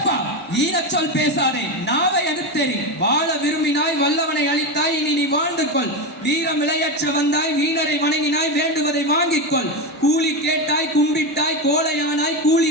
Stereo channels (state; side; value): normal; both; correlation 0.15